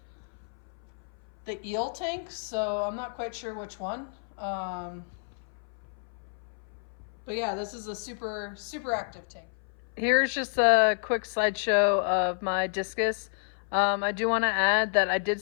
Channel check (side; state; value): right; silent; 58 dB below the other